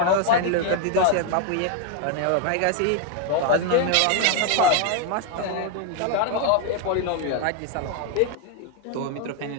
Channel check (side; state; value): both; different; correlation 0.01